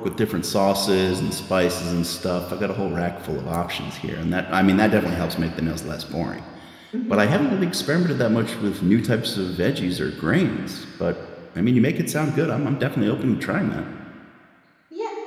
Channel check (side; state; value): both; identical; correlation 1.00